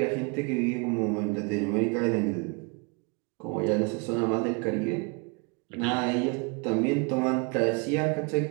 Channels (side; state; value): left; quieter; 32.4 dB